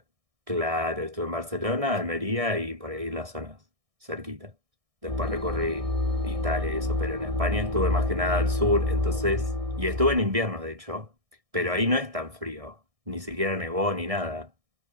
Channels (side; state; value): left; late; 1.6 ms